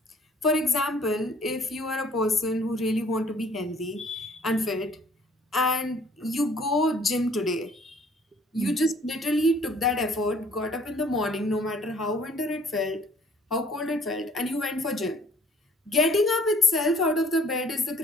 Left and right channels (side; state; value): both; normal; correlation 0.58